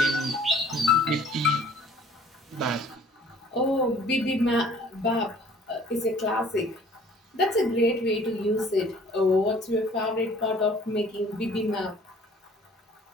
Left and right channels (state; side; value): normal; both; correlation 0.54